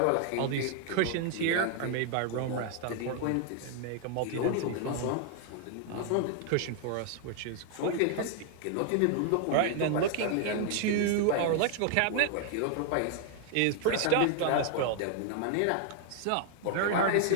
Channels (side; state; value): both; different; correlation 0.00